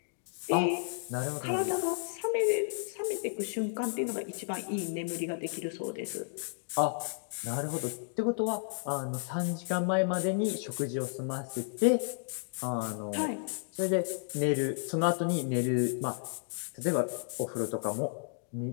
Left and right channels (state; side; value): silent; right; digital silence